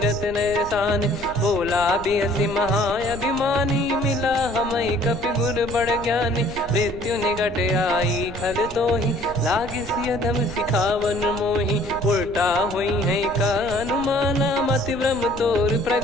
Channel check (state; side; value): noise; right; rumble, 14 dB below the sound